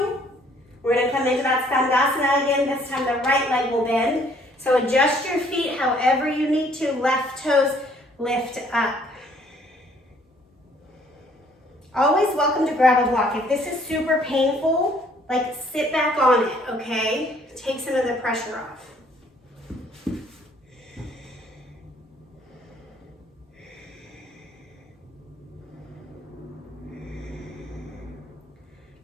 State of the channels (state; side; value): normal; both; correlation 0.61